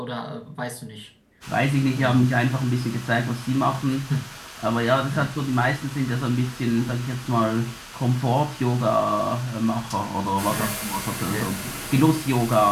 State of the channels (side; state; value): both; identical; correlation 1.00